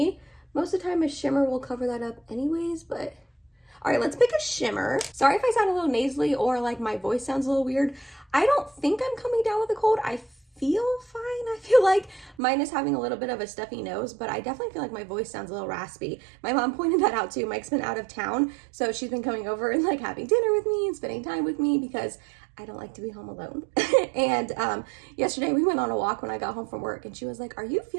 Most of the time a shimmer will cover that up anyways, but All right, let's pick a shimmer. Sorry if I sound a little nasally or like my voice sounds a little weird. I don't think I'm coming down with a cold. I feel fine. I feel like mine is having a little bit of a stuffy nose, but I definitely feel like my voice sounds a little raspy. My mom pointed that out too. Mike's been out of town, so she's been coming over and like having dinner with me and spending time with me because I don't like to be home alone. And yesterday we went on a walk when I got home from work, and she was like, "Are you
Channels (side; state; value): left; drops out; at 12.4 s